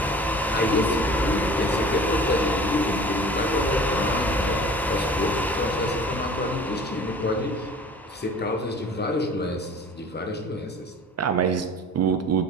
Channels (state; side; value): normal; both; correlation 0.44